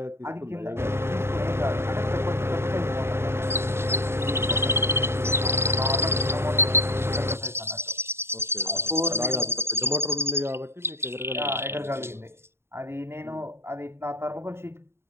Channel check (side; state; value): left; late; 0.12 ms